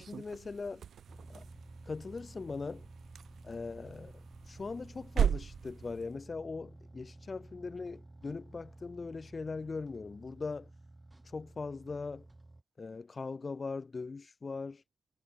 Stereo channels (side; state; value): both; normal; correlation 0.82